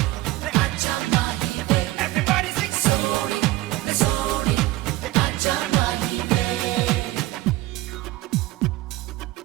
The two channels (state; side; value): quieter; left; 17.9 dB